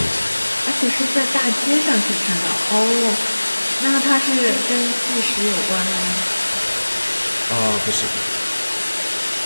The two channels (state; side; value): inverted; both; correlation -1.00